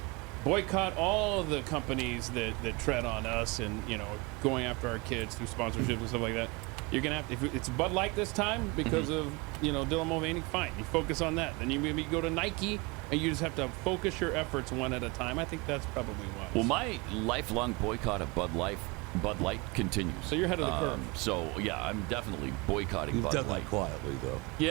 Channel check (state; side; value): quieter; left; 26.2 dB